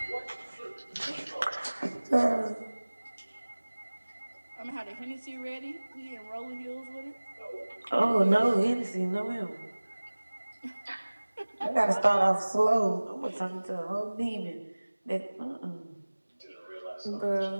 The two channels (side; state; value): both; inverted; correlation -1.00